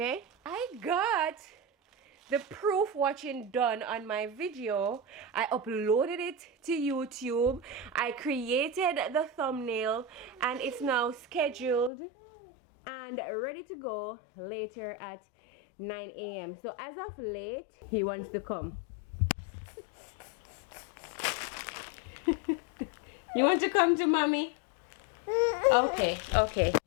I got the proof watching done on my video. I uploaded it to YouTube. I created the thumbnail, and it's now scheduled and ready to go later at 9 a.m. So as of late, he wants to come. You want to come to mommy? Okay, okay.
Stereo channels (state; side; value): drops out; right; at 11.9 s